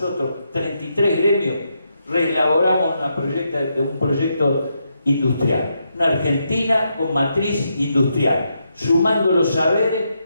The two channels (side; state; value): both; inverted; correlation -0.81